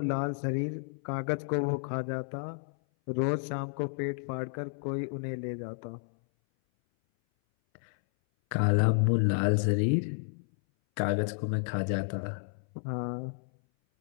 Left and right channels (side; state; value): right; silent; 57 dB below the other